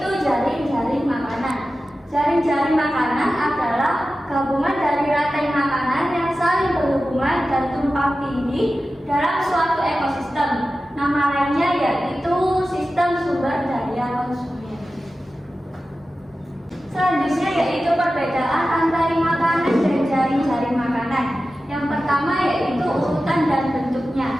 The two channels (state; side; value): normal; both; correlation 0.94